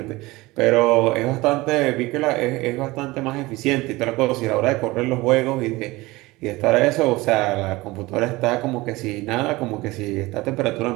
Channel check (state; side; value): quieter; left; 20.9 dB